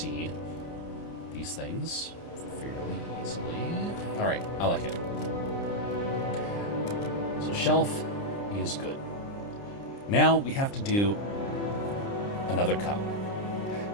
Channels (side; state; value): right; late; 30 ms